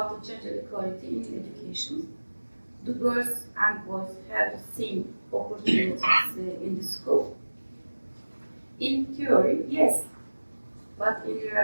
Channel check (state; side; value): inverted; both; correlation -1.00